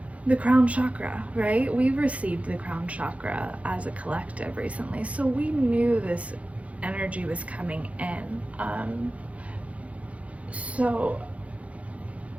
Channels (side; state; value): left; late; 0.065 ms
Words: the crown chakra, right? We've received the crown chakra as a collective recently, so we knew this energy was coming in. So